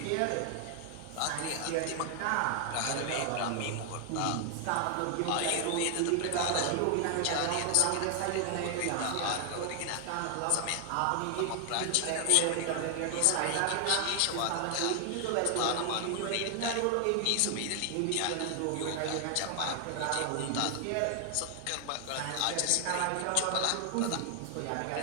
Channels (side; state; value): both; different; correlation 0.00